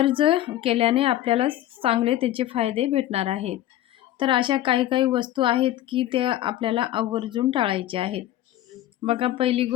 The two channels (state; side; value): quieter; right; 13.5 dB